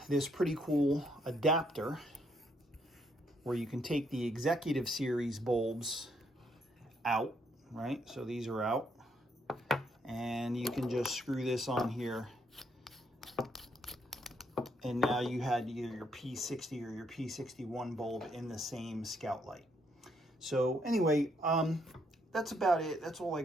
this pretty cool adapter where you can take the executive series bulbs out, right? So these are out, and you can just screw this on here, and now you had either your P60 or your P61 bulb in the same Scoutlight. So anyway, that's about it. That's all I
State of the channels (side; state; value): both; normal; correlation 0.73